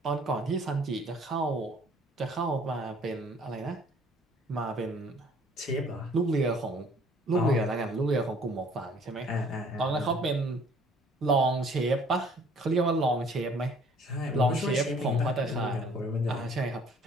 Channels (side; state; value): both; normal; correlation 0.56